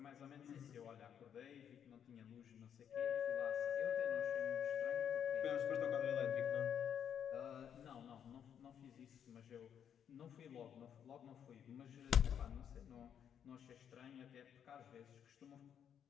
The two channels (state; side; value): quieter; right; 8.6 dB